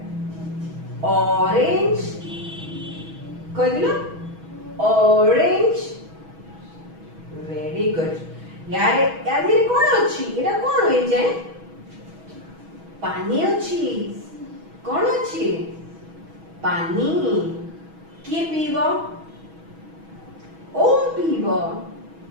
অরেঞ্জ। কই দিল? অরেঞ্জ। Very good. यार यार কোন ଅଛି? এটা কোন হই যায়? পানি ଅଛି। কোন ଅଛି? পানি। কিଏ ପିଇବ? ଓମ୍ ପିଇବ।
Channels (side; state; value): left; late; 6.2 ms